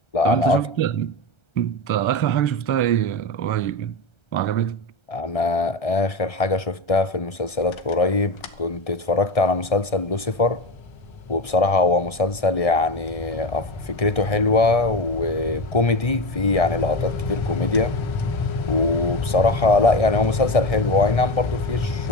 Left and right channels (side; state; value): right; late; 1.6 ms